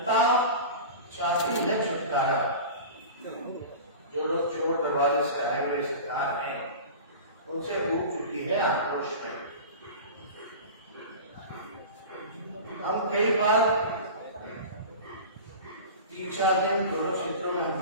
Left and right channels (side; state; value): both; inverted; correlation -0.34